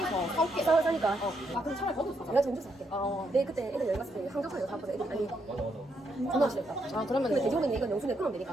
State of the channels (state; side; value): normal; both; correlation 0.77